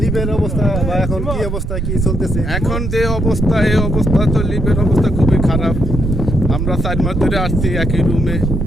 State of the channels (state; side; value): noise; right; rumble, 2 dB below the sound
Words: লিবিয়ার অবস্থা বা এখন কি অবস্থা, কি চলতেছে? এখন যে অবস্থা, এই অবস্থা তো লিবিয়ার অবস্থা খুবই খারাপ। আমরা 4 মাস ধরে আসছি একই রুমে,